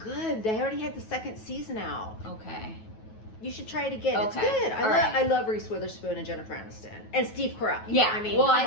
They already had the second season out. Okay. You should try it again. Okay. It's good. I love Reese Witherspoon and Jennifer Aniston and Steve Carell. Yeah. I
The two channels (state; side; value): late; right; 9.2 ms